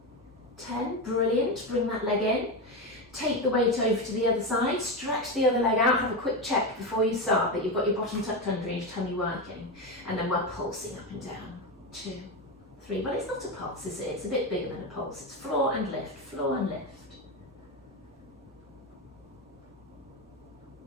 10. Brilliant. Bring that leg in. Take the weight over to the other side, stretch the other leg out, have a quick check before you start that you've got your bottom tucked under and your tummy working, and then we're pulsing up and down. 2, 3, well, it's not a pulse, is it? It's a bit bigger than a pulse. It's floor and lift, floor and lift.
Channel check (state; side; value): normal; both; correlation 0.15